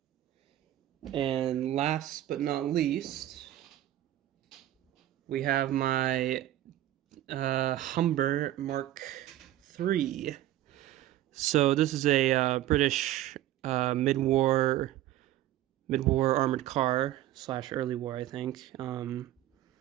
And last but not least, we have my Humber Mark III. So this is a British mid-war armored car / early war, I think.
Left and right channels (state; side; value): quieter; left; 13.7 dB